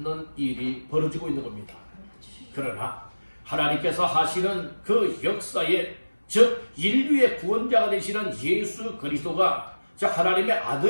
일이 벌어지고 있는 겁니다. 그러나 하나님께서 하시는 그 역사에 즉 인류의 구원자가 되시는 예수 그리스도가 즉 하나님의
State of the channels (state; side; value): inverted; both; correlation -1.00